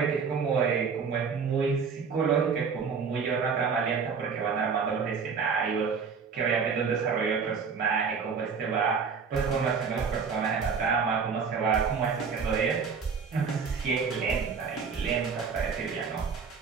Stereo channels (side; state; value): left; quieter; 5.8 dB